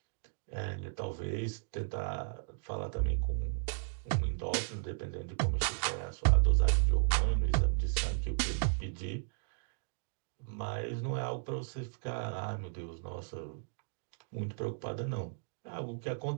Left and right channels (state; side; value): silent; left; digital silence